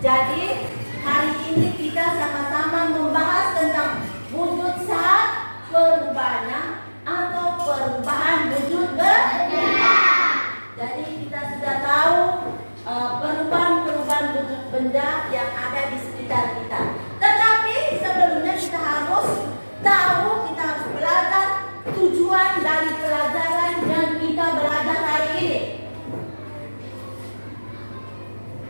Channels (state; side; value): inverted; both; correlation -1.00